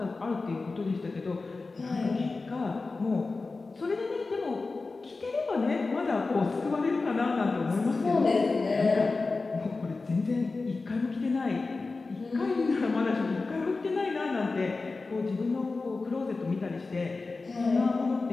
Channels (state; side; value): quieter; right; 3.8 dB